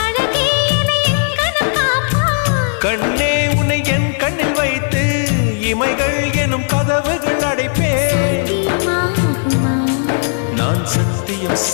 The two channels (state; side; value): silent; right; 63 dB below the other